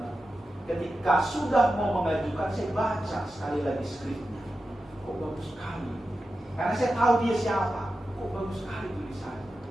Ketika sudah mau mengajukan, saya baca sekali lagi skripnya. Kok bagus sekali. Karena saya tahu dia siapa. Kok bagus sekali tulisannya.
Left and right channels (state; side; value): normal; both; correlation 0.92